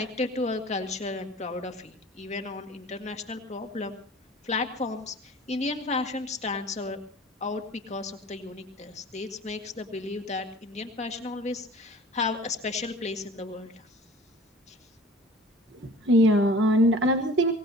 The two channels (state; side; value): normal; both; correlation 0.45